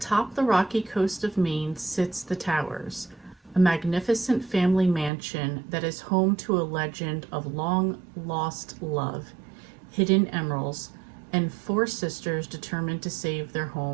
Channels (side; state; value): left; drops out; at 5.1 s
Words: the rocky coast of Maine sits the Towers, a magnificent family mansion that is home to a legend of long lost love, hidden emeralds, and 4 sisters determined to save their